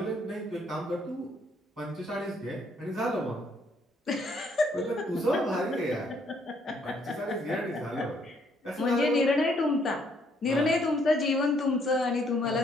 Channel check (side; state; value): both; normal; correlation 0.68